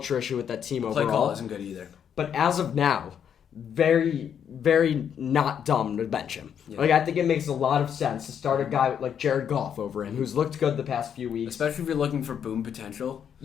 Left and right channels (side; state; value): right; quieter; 8.4 dB